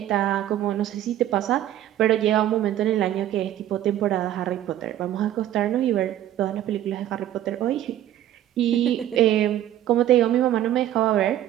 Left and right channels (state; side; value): quieter; left; 12.3 dB